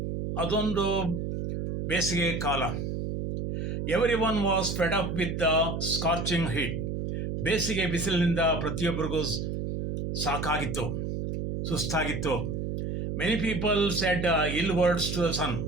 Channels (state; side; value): noise; right; hum, 3 dB below the sound